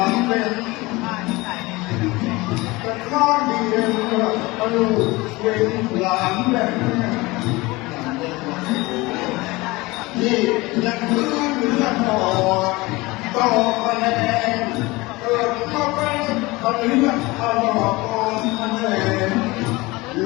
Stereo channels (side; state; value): right; quieter; 22.2 dB